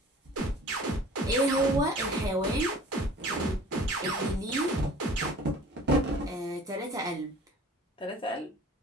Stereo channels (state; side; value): normal; both; correlation 0.47